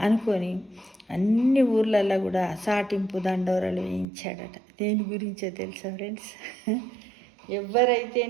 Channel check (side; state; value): left; drops out; at 4.0 s